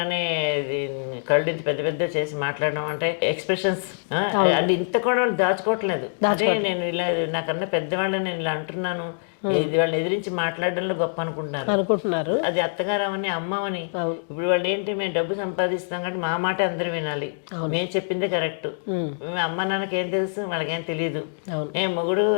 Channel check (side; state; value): right; silent; digital silence